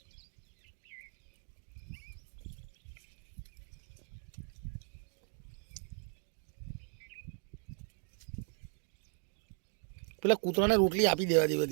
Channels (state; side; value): silent; left; 52 dB below the other